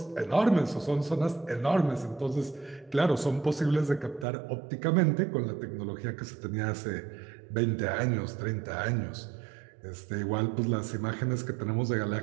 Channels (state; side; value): drops out; left; at 4.2 s